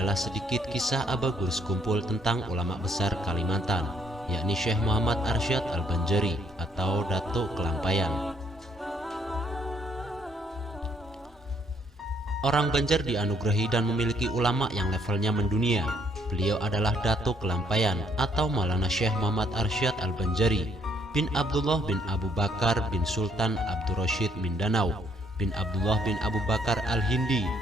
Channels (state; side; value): normal; both; correlation 0.68